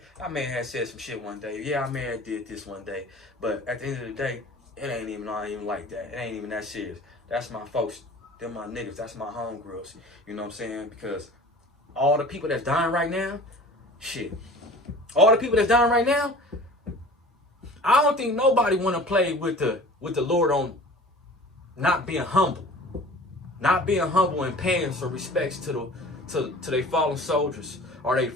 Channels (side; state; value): both; normal; correlation 0.43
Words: I may have said some shit one day. Yeah, I may have did this one day. But at the end of the day, it ain't even like that. It ain't even that serious. That's my folks. They're my niggas. That's my homegirls. You know what I'm saying? Because all the people that's dying right now, shit. All the people that's dying right now, I don't think nobody want to play with the Lord on not being humble. Not being humble and paying some respects to their fallen soldiers or their